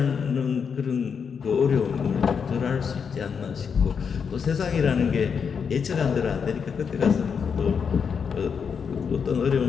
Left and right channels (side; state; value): right; quieter; 6.4 dB